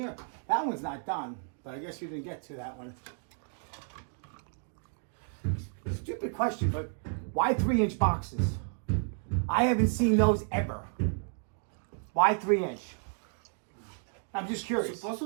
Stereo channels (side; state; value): left; silent; 56 dB below the other